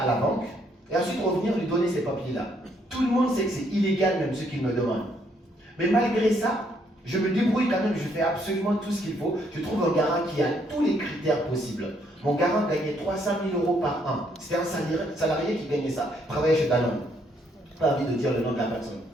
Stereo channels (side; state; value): both; normal; correlation 0.70